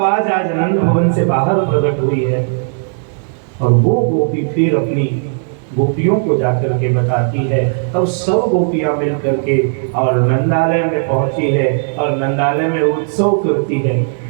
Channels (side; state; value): left; silent; 58 dB below the other